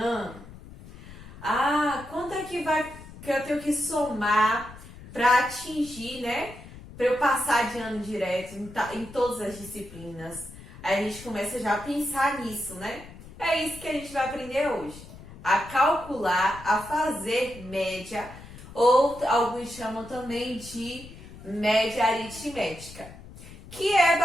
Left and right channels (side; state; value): left; noise; rumble, 17 dB below the sound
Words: Ah, quanto é que eu tenho que somar para atingir, né? Para eu passar de ano direto em todas as disciplinas. Aí a gente começa já a pensar nisso, né? É isso que a gente vai aprender hoje. A calcular, a fazer média, ou alguns chamam também de média aritmética, que é